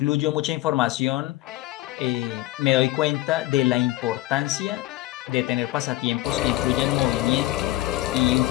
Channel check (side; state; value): right; quieter; 17.0 dB